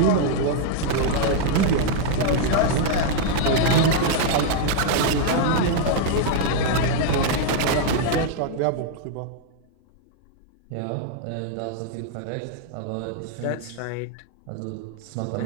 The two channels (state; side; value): different; both; correlation -0.01